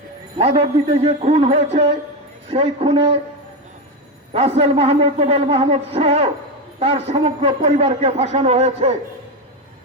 মাধবদীতে যে খুন হয়েছে, সেই খুনে রাসেল মাহমুদ, নোবেল মাহমুদ সহ তার সমগ্র পরিবারকে ফাঁসানো হয়েছে।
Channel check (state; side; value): normal; both; correlation 0.13